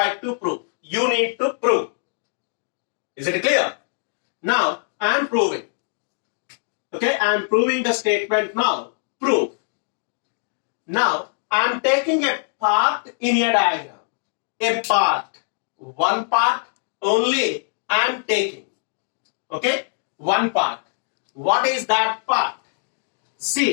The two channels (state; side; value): silent; right; digital silence